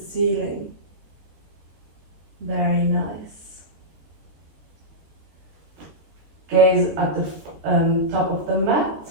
ceiling. Very nice. Gaze at the top of the mat.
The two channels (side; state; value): left; late; 13 ms